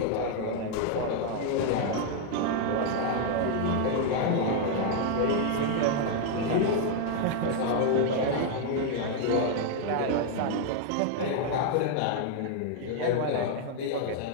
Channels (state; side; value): different; both; correlation 0.00